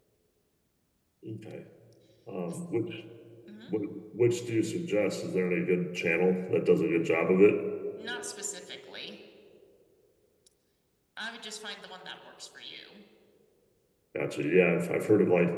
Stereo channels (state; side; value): identical; both; correlation 1.00